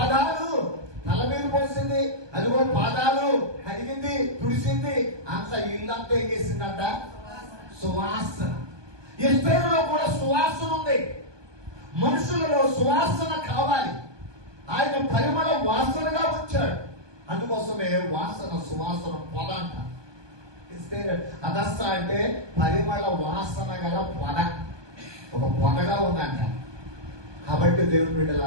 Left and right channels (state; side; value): late; left; 1.2 ms